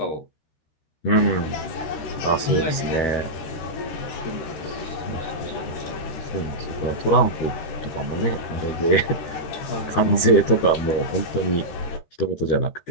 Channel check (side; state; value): right; late; 13 ms